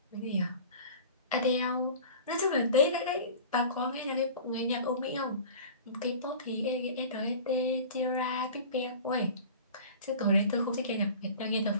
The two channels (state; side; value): inverted; both; correlation -0.39